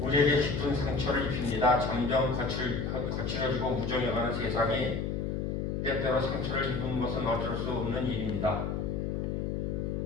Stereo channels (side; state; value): left; noise; hum, 1 dB below the sound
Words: 깊은 상처를 입힙니다. 점점 거칠어지고 무정해가는 세상이 때때로 상처를 입은 것은 어쩔 수 없는 일입니다.